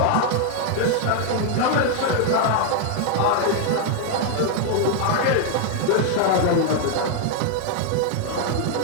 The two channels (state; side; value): different; both; correlation 0.00